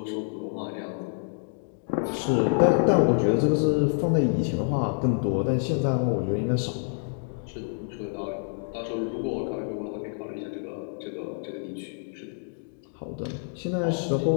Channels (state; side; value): silent; right; digital silence